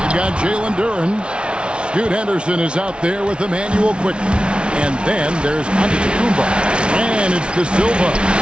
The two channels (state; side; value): late; left; 0.057 ms